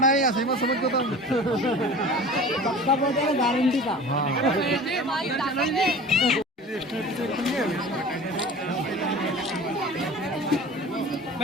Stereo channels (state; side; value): normal; both; correlation 0.39